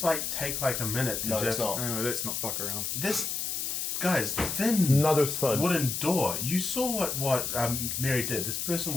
like take like a minute to No, just. it's not. No, let's not fuck around. This, guys, thin Another thud. wooden door. You saw what Mary did. This person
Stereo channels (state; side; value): noise; left; hiss, 2 dB below the sound